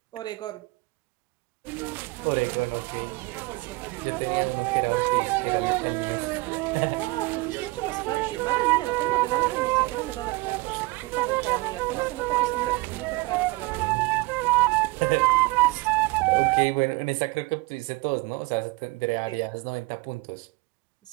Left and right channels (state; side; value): quieter; left; 22.7 dB